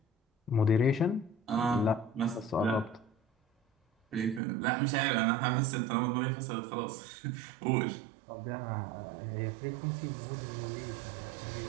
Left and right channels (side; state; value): left; drops out; at 4.4 s